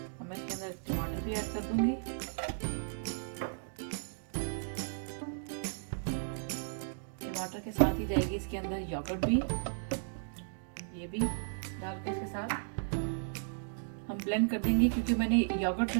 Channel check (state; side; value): silent; left; digital silence